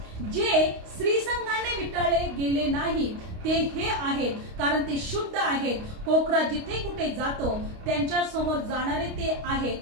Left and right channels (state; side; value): late; left; 29 ms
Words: जे स्त्रीसंघाने विटाळले गेले नाही ते हे आहेत, कारण ते शुद्ध आहेत. कोकरा जिथे कुठे जातो त्यांच्या समोर जाणारे ते आहेत.